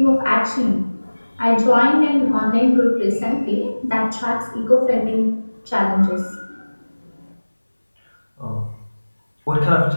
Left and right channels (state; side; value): inverted; both; correlation -1.00